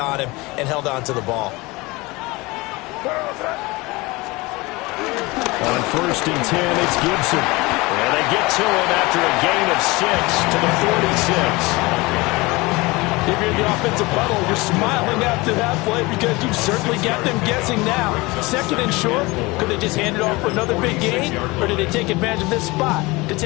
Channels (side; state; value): right; quieter; 23.1 dB